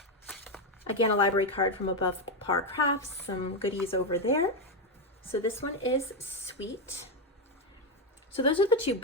Again, a library card from Above Par Crafts, some goodies over there. So this one is sweet. So those are the 2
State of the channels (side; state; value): both; normal; correlation 0.08